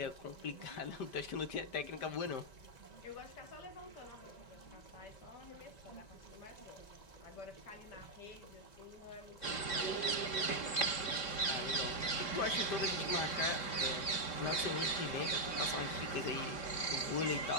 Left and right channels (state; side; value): late; right; 5.1 ms